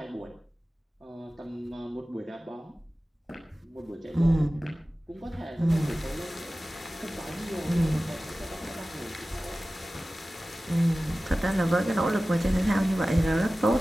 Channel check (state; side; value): normal; both; correlation 0.96